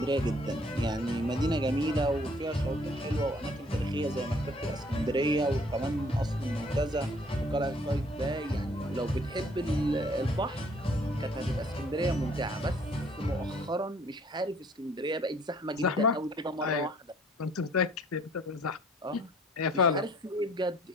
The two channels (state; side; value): normal; both; correlation 0.58